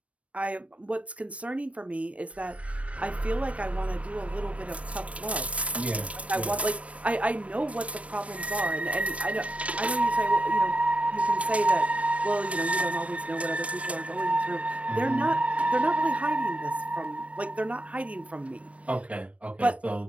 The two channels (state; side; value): late; left; 0.064 ms